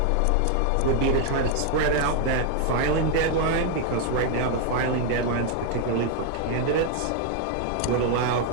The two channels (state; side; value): different; both; correlation 0.00